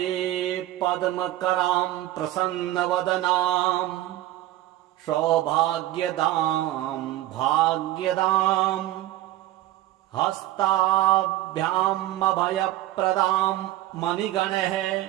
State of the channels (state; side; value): quieter; left; 15.1 dB